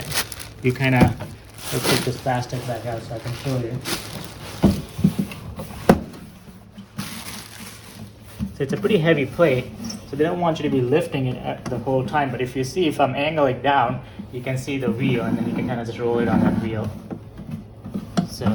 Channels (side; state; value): both; identical; correlation 1.00